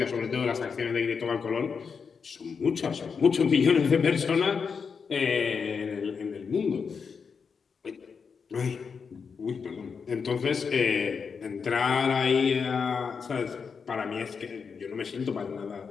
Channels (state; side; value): quieter; right; 5.8 dB